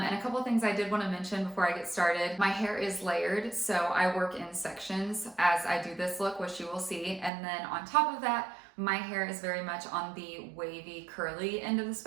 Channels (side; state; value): left; drops out; at 7.3 s